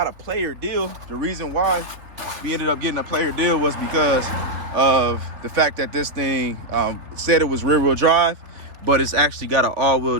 a player deal. The reason why we ended up getting a player deal was because of the fact that this thing said it was rear-wheel drive, but it's actually got an all-wheel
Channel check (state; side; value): late; left; 3.3 ms